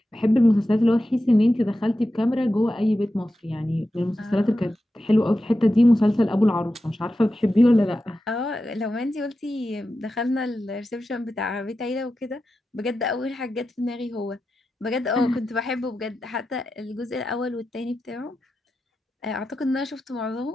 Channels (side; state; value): both; normal; correlation 0.91